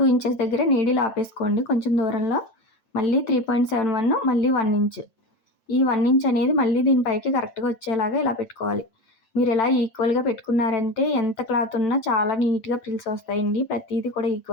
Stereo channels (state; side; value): late; right; 8.9 ms